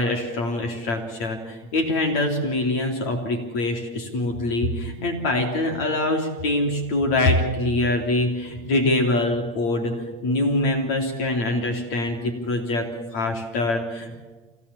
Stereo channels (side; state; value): right; late; 8.7 ms